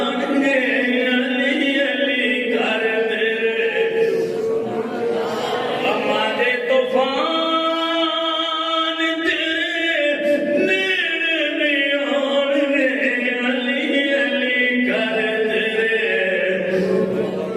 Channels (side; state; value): both; identical; correlation 1.00